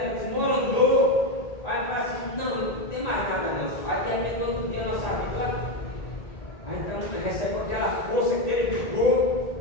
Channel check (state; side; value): late; right; 1.9 ms